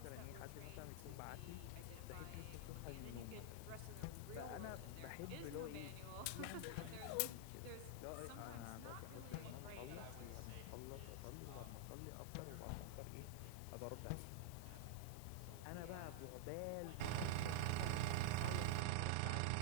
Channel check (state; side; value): different; both; correlation -0.01